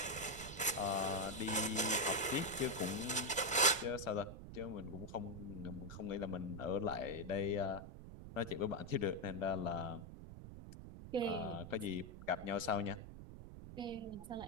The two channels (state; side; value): noise; right; rumble, 12 dB below the sound